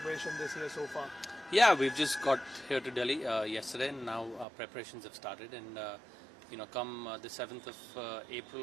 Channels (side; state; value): left; drops out; at 4.5 s